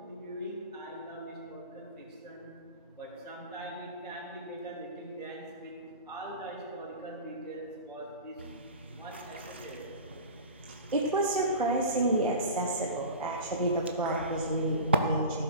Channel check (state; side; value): inverted; both; correlation -0.33